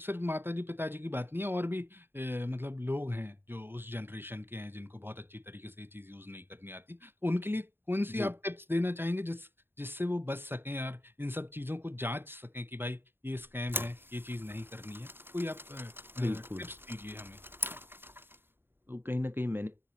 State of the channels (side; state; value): left; late; 0.11 ms